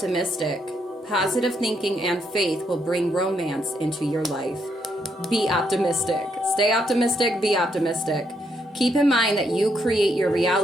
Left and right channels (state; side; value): normal; both; correlation 0.76